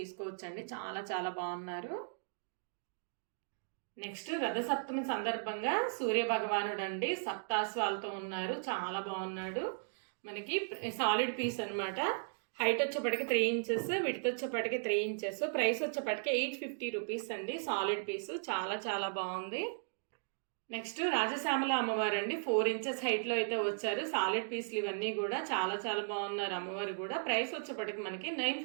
చాలా బాగున్నారు. నెక్స్ట్ రథసప్తమి సందర్భంగా సూర్య భగవానుడు అండి, సప్తాశ్వాలతో ఉన్నారు. చాలా బాగున్నాడు. మనకి సాలిడ్ పీస్ అనమాట. హైట్ వచ్చేప్పటికి 3 ఇంచెస్, విడ్త్ వచ్చేప్పటికి 3 ఇంచెస్. ప్రైస్ వచ్చేప్పటికి 850 రూపీస్ అండి. సాలిడ్ పీస్ చాలా బాగుంది. నెక్స్ట్ రాజశ్యామల అమ్మవారు అండి, 4 ఇంచెస్ హైట్లో అయితే వచ్చారు. సాలిడ్ పీస్లు ఇవన్నీ కూడా చాలా బాగున్నారు అమ్మవారు కూడా. ప్రైస్ వచ్చేప్పటికి మనకి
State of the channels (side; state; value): left; silent; digital silence